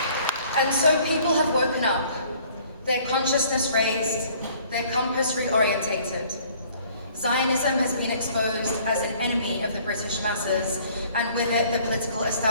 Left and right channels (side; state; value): both; inverted; correlation -0.56